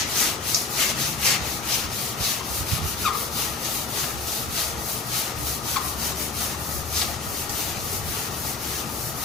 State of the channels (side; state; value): right; quieter; 3.9 dB